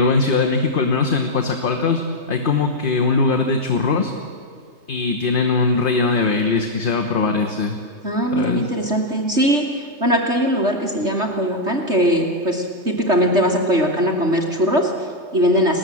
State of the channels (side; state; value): left; late; 3.3 ms